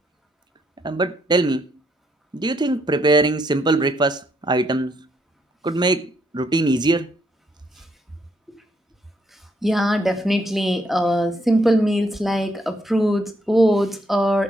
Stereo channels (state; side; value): normal; both; correlation 0.74